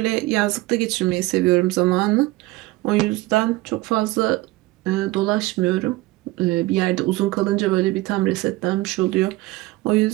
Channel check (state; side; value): quieter; left; 19.6 dB